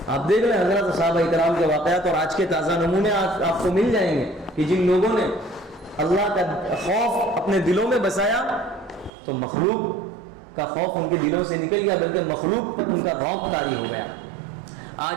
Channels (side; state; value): left; drops out; at 9.1 s